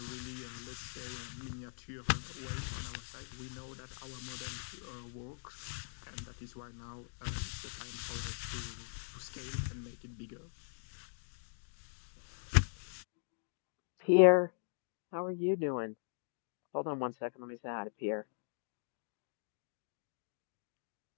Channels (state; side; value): silent; right; digital silence